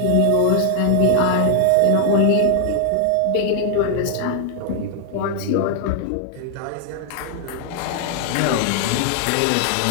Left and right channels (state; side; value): different; both; correlation 0.00